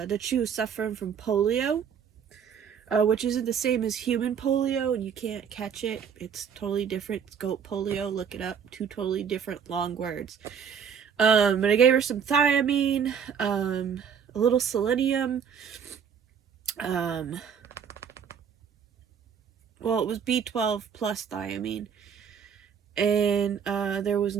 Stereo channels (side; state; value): left; quieter; 7.3 dB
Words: she was suffering from polio, which isn't the same as human polio, and you can't catch it. It's totally different. It's goat polio. Look it up. Two totally different long words. But I gave her some thiamine, a little selenium. Well, it was B12 plus thiamine. And there was